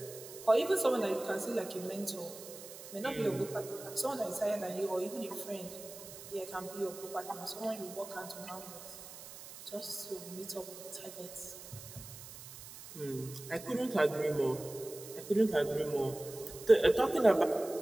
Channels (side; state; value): right; noise; hiss, 14 dB below the sound